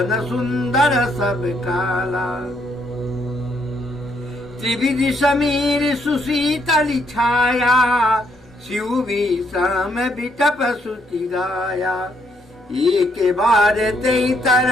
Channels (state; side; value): normal; both; correlation 0.73